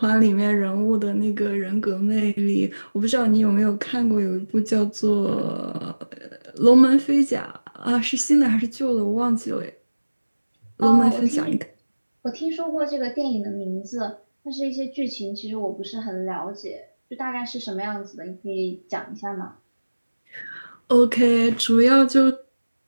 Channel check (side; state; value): both; inverted; correlation -1.00